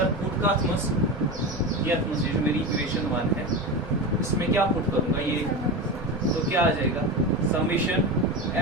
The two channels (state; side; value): normal; both; correlation 0.23